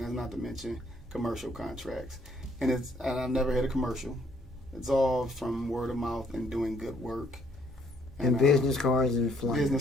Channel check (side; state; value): both; normal; correlation 0.66